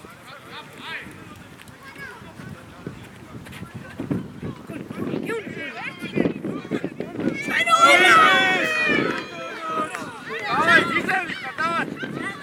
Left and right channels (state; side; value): identical; both; correlation 1.00